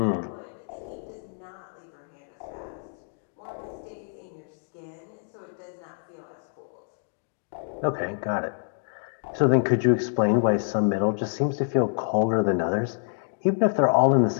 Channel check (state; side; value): silent; right; digital silence